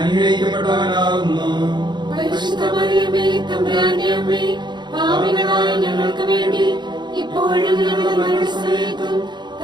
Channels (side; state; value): left; late; 0.21 ms